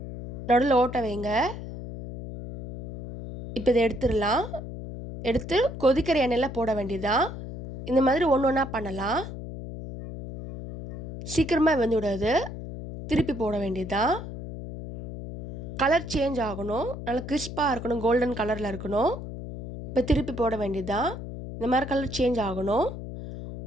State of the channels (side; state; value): left; noise; hum, 9 dB below the sound